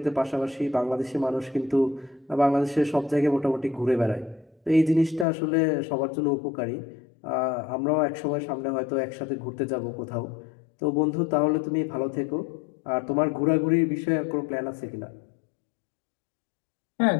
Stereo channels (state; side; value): drops out; right; at 5.2 s